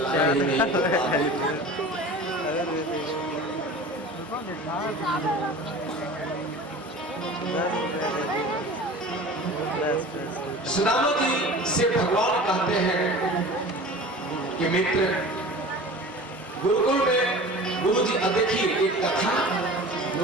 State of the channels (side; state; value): both; normal; correlation 0.38